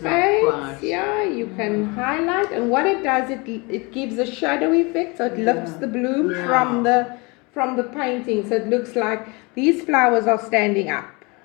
not fades, quite. yeah, you can highlight, and what it does, it gives a shadow effect, so it lifts the bloom Yeah. from the painting, so it looks like these flowers are standing up,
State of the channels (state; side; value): quieter; right; 27.7 dB